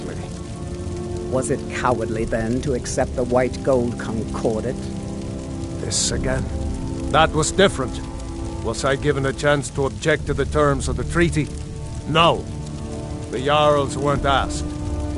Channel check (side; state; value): both; identical; correlation 1.00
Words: Was it cowardly, then, to accept the white gold concordat? This again? That was different. Was I given a chance to object to the terms of the treaty? No. The Jarls weren't asked.